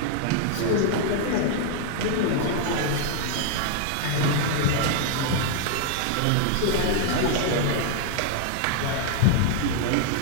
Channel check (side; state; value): both; different; correlation -0.01